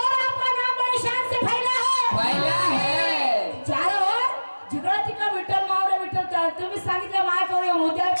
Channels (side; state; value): both; inverted; correlation -1.00